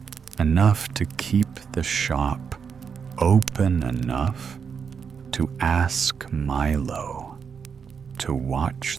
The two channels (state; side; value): quieter; left; 6.4 dB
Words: enough to keep the shop open enough to ask Milo. to